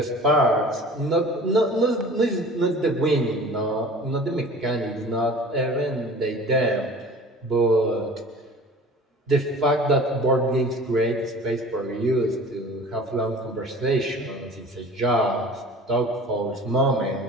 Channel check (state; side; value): normal; both; correlation 0.43